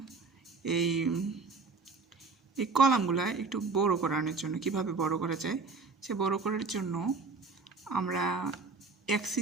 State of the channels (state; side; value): quieter; left; 4.3 dB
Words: এই কলামগুলো একটু বড় করানোর জন্য কিভাবে বড় করা যায়। সে বড় করার জন্য আমরা